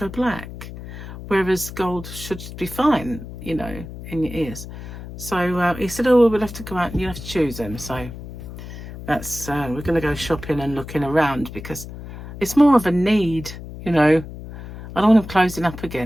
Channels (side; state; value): left; noise; hum, 12 dB below the sound